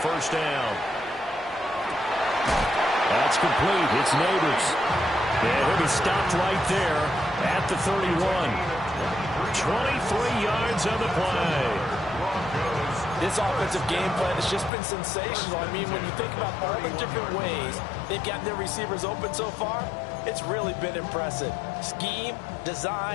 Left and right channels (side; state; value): right; drops out; at 14.7 s